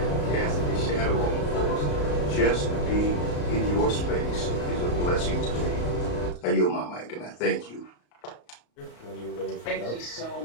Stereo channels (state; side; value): late; right; 34 ms